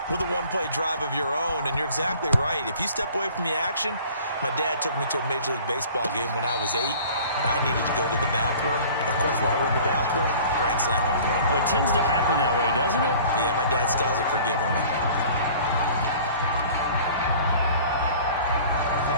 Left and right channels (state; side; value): inverted; both; correlation -0.47